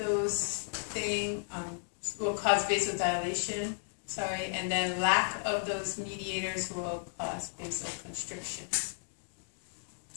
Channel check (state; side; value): silent; right; digital silence